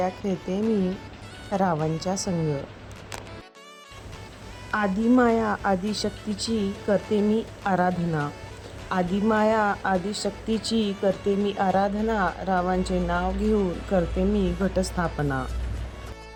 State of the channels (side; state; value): both; identical; correlation 1.00